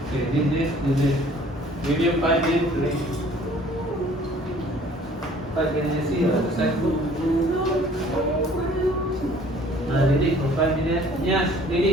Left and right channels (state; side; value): normal; both; correlation 0.54